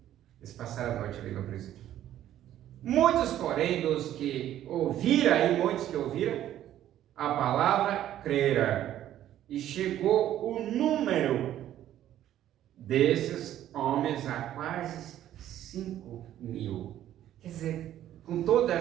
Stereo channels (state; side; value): quieter; left; 12.1 dB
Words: eles passaram a noite ali no presídio. Muitos, porém, dos que ouviram, e muitos que ouviram a palavra, creram. E chegou o número desses homens a quase 5.000. Quer dizer, com toda